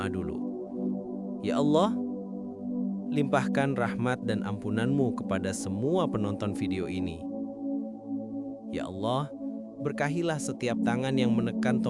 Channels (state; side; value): identical; both; correlation 1.00